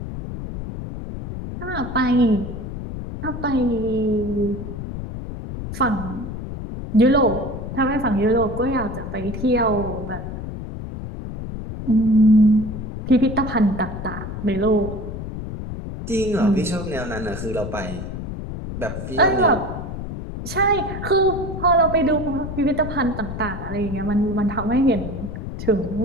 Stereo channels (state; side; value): noise; left; rumble, 7 dB below the sound